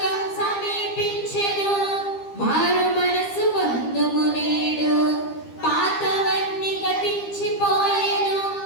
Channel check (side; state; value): right; late; 12 ms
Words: సమీపించెను, మారు మనసు పొందుము నేడు, పాతవన్నీ గతించిపోయెను,